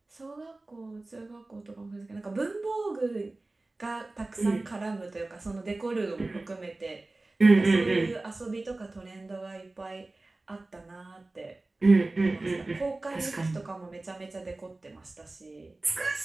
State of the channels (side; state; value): left; quieter; 3.0 dB